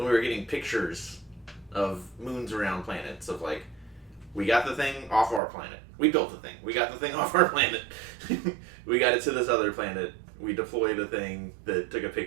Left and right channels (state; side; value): drops out; left; at 5.4 s